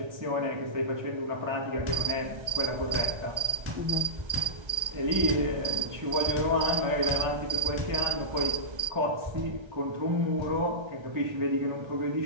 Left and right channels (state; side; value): late; left; 1.3 ms